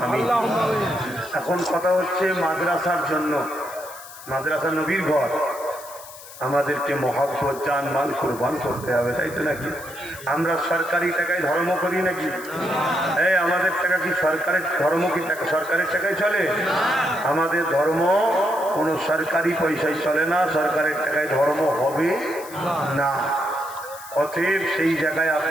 আমিন। এখন কথা হচ্ছে মাদ্রাসার জন্য, মাদ্রাসা নবীর ঘর, আমাদেরকে মহব্বত জান মাল কুরবান করতে হবে, তাই তো নাকি? আমরা সরকারি টাকায় ধর্ম করি নাকি? এই আমাদের টাকা কি সরকারের ধর্ম, কি টাকা সরকারের টাকায় চলে? আমাদের ধর্ম কোনো সরকারি পয়সায় চলে না, সরকারের টাকায় ধর্ম হবে না। অতএব সেই জায়গায়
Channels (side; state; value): left; noise; hiss, 16 dB below the sound